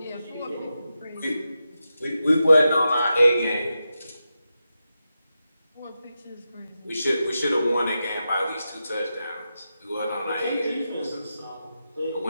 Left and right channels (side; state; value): both; inverted; correlation -0.89